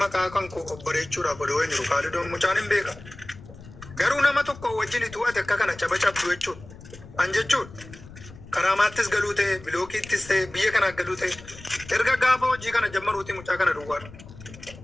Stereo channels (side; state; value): left; noise; rumble, 18 dB below the sound